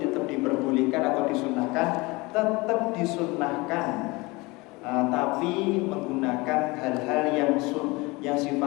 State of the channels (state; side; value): quieter; right; 24.0 dB